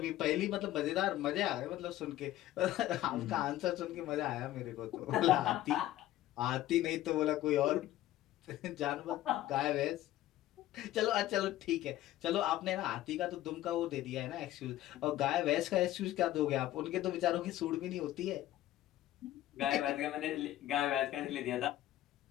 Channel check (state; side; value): quieter; right; 14.3 dB